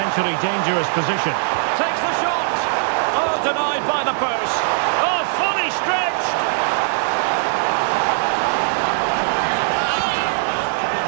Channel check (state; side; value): silent; left; 66 dB below the other